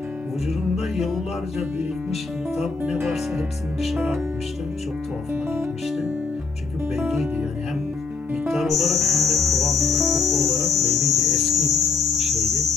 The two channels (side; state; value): right; quieter; 4.7 dB